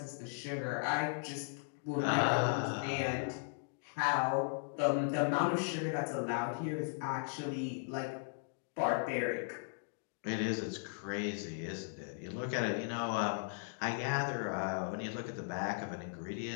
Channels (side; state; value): right; silent; digital silence